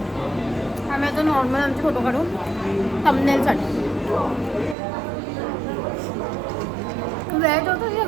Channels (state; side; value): drops out; left; at 4.8 s